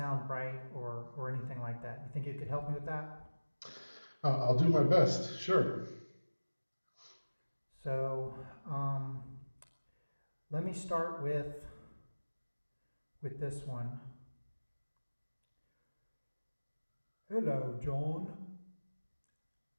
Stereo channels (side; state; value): both; inverted; correlation -1.00